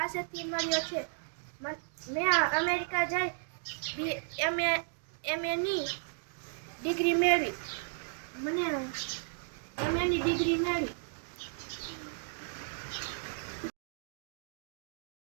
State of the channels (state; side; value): silent; left; digital silence